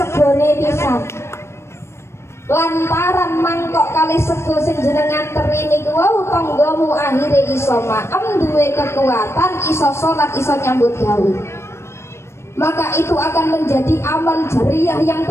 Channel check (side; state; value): right; late; 0.13 ms